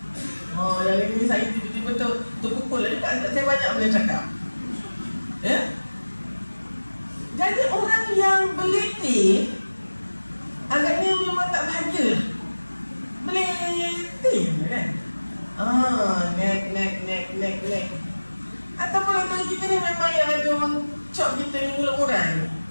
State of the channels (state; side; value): inverted; both; correlation -1.00